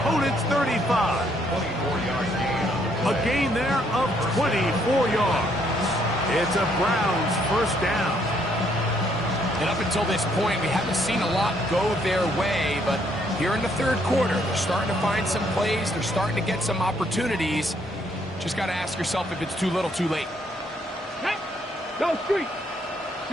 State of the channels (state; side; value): normal; both; correlation 0.70